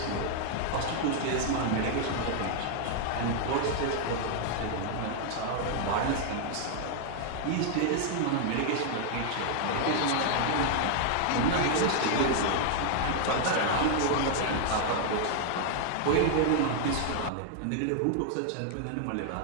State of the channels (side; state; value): both; different; correlation 0.00